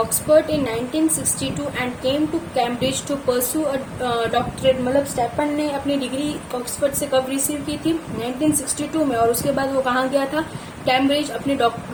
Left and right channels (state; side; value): identical; both; correlation 1.00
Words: in 1962 and came to Cambridge to pursue a doctorate. मतलब स्टेफन ने अपनी डिग्री ऑक्सफोर्ड से कब रिसीव की थी? 1962 में, और उसके बाद वो कहाँ गया था? कैम्ब्रिज, अपनी